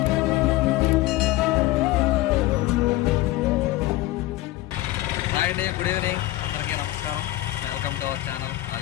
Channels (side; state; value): right; quieter; 16.9 dB